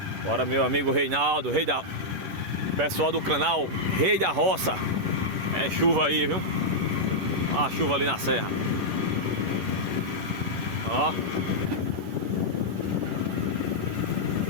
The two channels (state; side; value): late; left; 11 ms